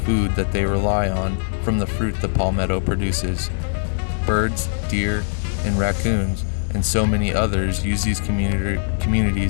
that they rely on from the fruit the palmetto produces. Birds, deer, and raccoons, and so many others use these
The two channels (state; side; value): silent; right; 65 dB below the other